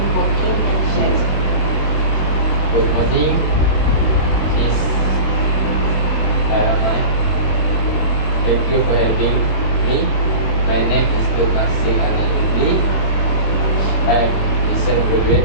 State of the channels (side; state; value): right; late; 25 ms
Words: working in Shell? Good morning, Miss Karamai. Thank you for having me. My name is Masih Anayuli. I am recent graduate